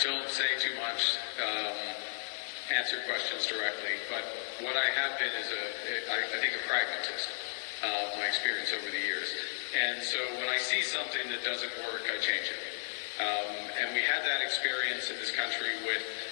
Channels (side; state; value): right; silent; digital silence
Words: say too much. Answer questions directly, but what I have been is I think a pragmatist, my experience over the years. And so when I see something that doesn't work, I change it. And we had that experience in this country with